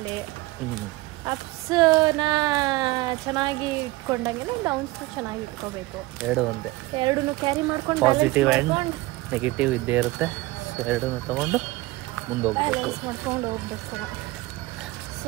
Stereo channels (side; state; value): left; quieter; 20.2 dB